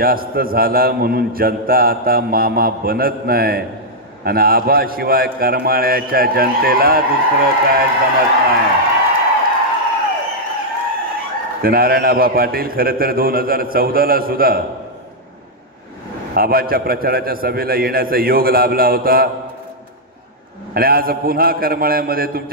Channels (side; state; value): both; normal; correlation -0.05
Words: झाला म्हणून जनता आता मामा बनत नाही आणि आबाशिवाय करमाळ्याच्या जनतेला दुसरं काय जमत नाही. तर नारायण आबा पाटील खरं तर 2014ला सुद्धा आबाच्या प्रचाराच्या सभेला येण्याचा योग लाभला होता आणि आज पुन्हा करमाळ्यामध्ये